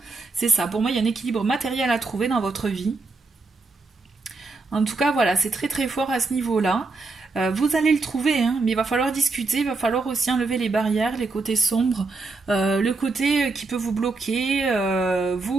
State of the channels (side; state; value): left; quieter; 3.7 dB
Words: c'est ça, pour moi il y a un équilibre matériel à trouver dans votre vie. En tout cas voilà, c'est très très fort à ce niveau-là. Vous allez le trouver, hein, mais il va falloir discuter, il va falloir aussi enlever les barrières, les côtés sombres, le côté qui peut vous bloquer,